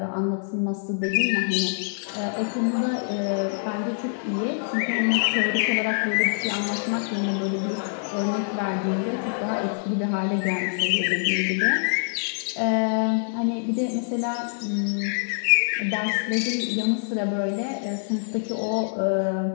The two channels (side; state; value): right; silent; 62 dB below the other